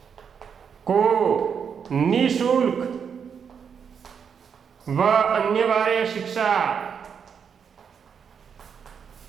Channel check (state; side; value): quieter; left; 7.0 dB